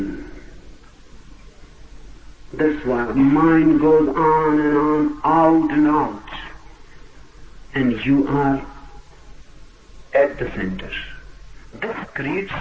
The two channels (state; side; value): identical; both; correlation 1.00